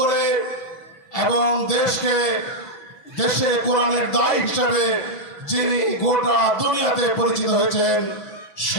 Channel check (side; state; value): right; late; 6.1 ms